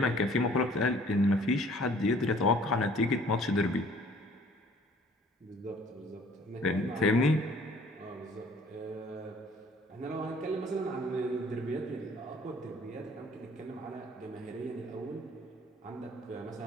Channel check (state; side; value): normal; both; correlation 0.55